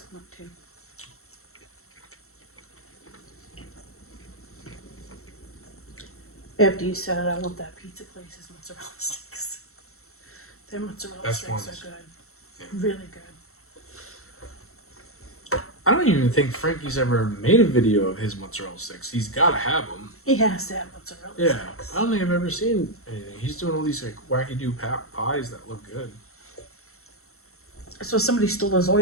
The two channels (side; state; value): right; late; 0.63 ms